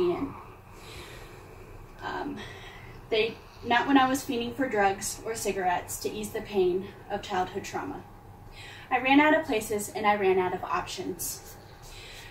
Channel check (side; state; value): both; identical; correlation 1.00